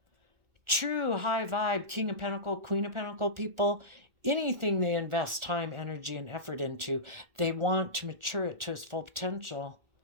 True high vibe, King of Pentacle, Queen of Pentacle people, anything they invest time, energy, and effort into, they want to mature it to its full potential.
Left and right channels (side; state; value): left; late; 1.4 ms